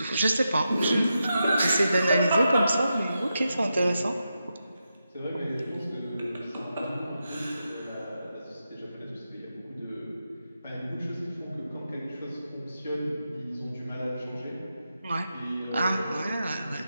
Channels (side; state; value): both; inverted; correlation -0.88